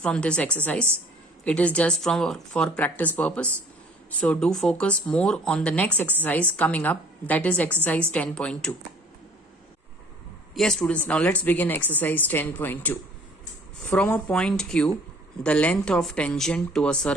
this exercise. It is just for practice purpose. So do focus more on the next exercise coming up, that is exercise 10.2. Yes students, now let's begin exercise 10.2. From a point Q, the length of tangent to a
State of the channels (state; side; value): normal; both; correlation 0.53